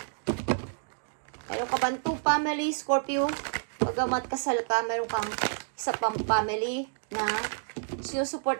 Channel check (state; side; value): silent; left; digital silence